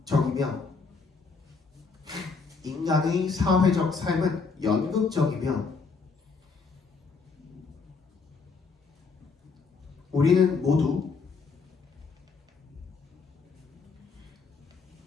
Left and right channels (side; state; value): right; quieter; 4.7 dB